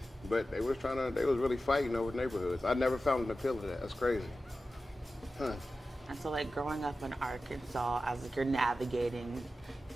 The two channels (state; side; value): normal; both; correlation 0.93